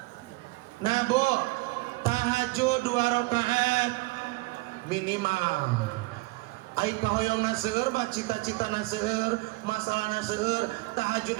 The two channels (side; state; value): left; quieter; 24.3 dB